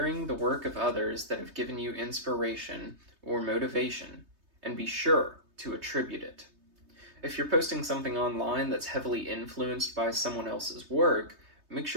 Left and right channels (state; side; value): late; left; 3.2 ms